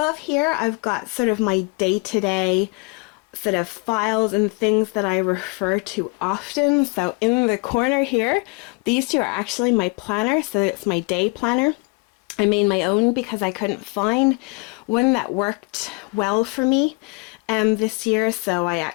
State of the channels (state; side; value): quieter; right; 29.8 dB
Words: here I've got sort of my day-to-day sort of files and things that I refer to often. So in the corner here, these two are actually my planner, so it's my day planner. I made my own because I couldn't find one that worked well for me this year, so I